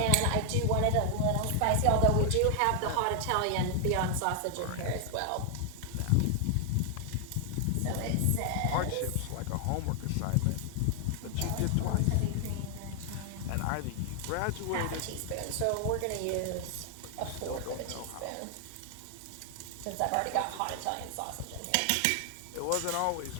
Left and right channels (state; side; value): different; both; correlation 0.00